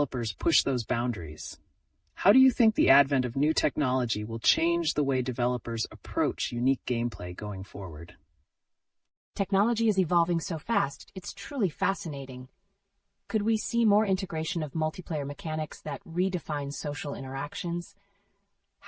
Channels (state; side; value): identical; both; correlation 1.00